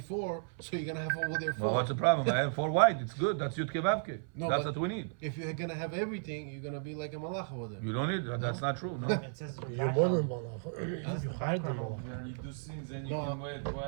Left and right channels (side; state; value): left; silent; 55 dB below the other